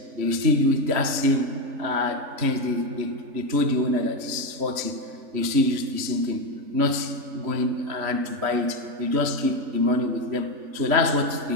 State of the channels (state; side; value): late; left; 3.1 ms